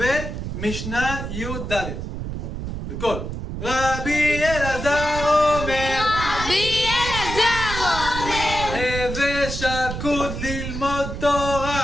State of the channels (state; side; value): noise; right; rumble, 6 dB below the sound